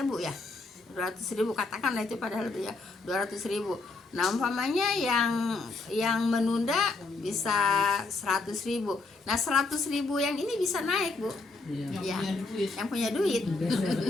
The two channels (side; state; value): right; quieter; 3.7 dB